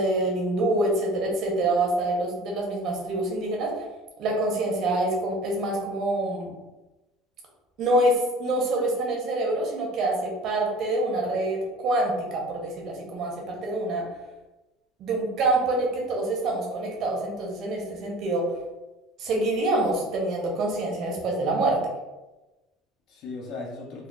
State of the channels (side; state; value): both; normal; correlation 0.42